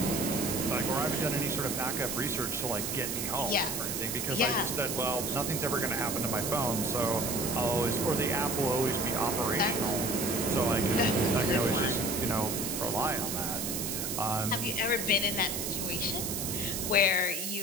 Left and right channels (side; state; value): right; noise; hiss, 3 dB below the sound